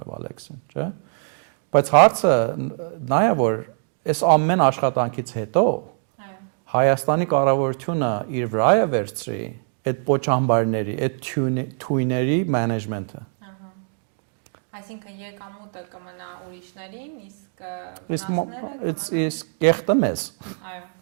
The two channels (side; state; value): left; silent; 63 dB below the other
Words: Վալեքսին, չէ՞։ Բայց հարցը նա է որ այս ամեն աշխատանքից հետո այո Հայաստանի կառավարությունը իր վրա է վերցրի այդ պոչամբարների, այդ թույների management-ը։ Ահա։ Այսինքն եկամուտը կմնա ուրիշներին, իսկ վնասները կմնան իսկ կեղտը մեզ։ Այո։